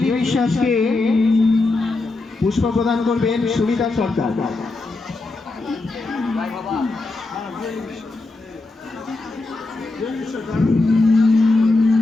বিশ্বাসকে পুষ্প প্রদান করবেন সুনিতা সরকার।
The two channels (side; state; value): right; quieter; 3.3 dB